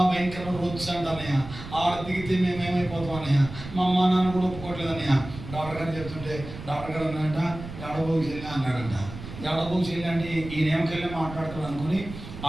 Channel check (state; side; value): noise; right; rumble, 12 dB below the sound